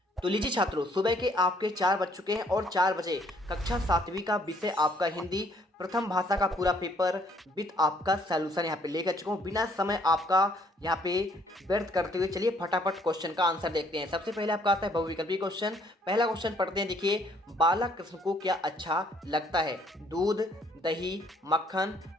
तो लीजिए छात्रों, सुबह के आपके 4 बज चुके हैं और 4 बजे कक्षा 7वीं का विषय आपका हिंदी प्रथम भाषा का पूरा पेपर विद आपका सॉल्यूशन यहाँ पे लेकर चुका हूँ। बिना समय आपका यहाँ पे व्यर्थ करते हुए चलिए फटाफट क्वेश्चन का आंसर देखते हैं। सबसे पहले आपका आता है बहुविकल्पी क्वेश्चन। पहला क्वेश्चन पढ़ते हैं। देखिए, बालक कृष्ण को क्या अच्छा लगता है? दूध, दही, मक्खन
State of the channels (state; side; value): normal; both; correlation 0.64